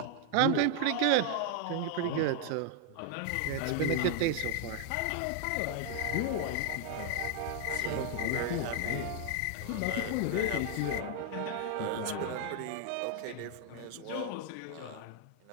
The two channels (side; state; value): both; different; correlation 0.00